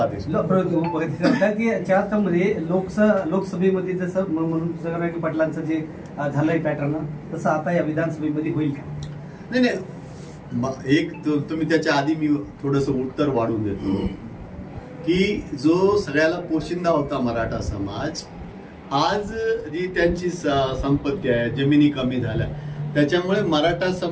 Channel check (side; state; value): both; identical; correlation 1.00